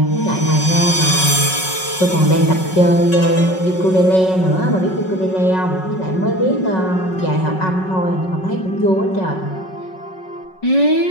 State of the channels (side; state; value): right; late; 5.4 ms